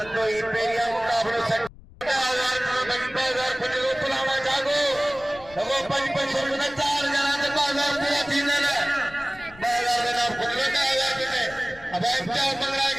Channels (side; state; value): left; noise; rumble, 21 dB below the sound